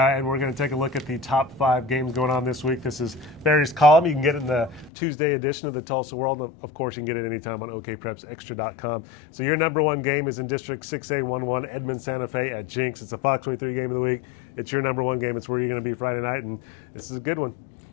we're going to take a look at the top 5 games going on this week. This is Barry's column. You can get it in the Tuesday edition of the Tulsa World. Of course, you can get it anytime on okprepsextra.com. So your number 1 game is in District 6A11, Edmond Santa Fe at Jinx. It's a Fox 23 game of the week. It's your number 1 game. It's where you're going to be Friday night, and this is a good one.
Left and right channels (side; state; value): right; drops out; at 4.9 s